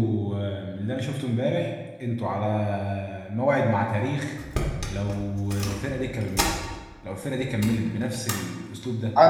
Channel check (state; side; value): identical; both; correlation 1.00